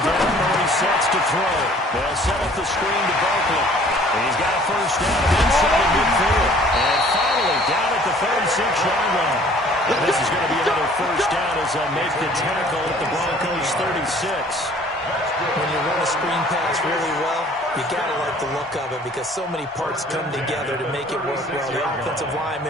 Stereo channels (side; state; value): both; normal; correlation 0.54